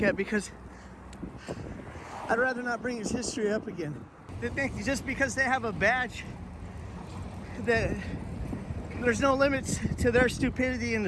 because I'd rather not bring his history up again. They think just because they have a badge that there's no limits to their stupidity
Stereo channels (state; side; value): identical; both; correlation 1.00